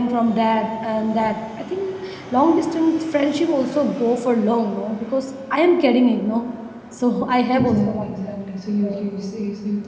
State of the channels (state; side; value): identical; both; correlation 1.00